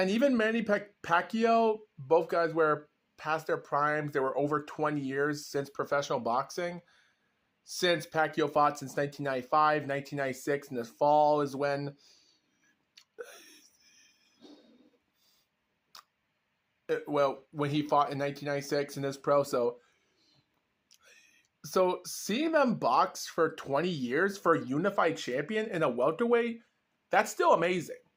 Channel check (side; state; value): both; identical; correlation 1.00